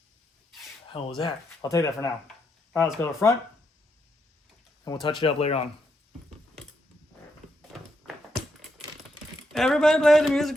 Hell was that? I'll take that for now. All right, let's go to the front, and we'll touch it up later on. Everybody play the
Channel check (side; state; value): both; normal; correlation 0.79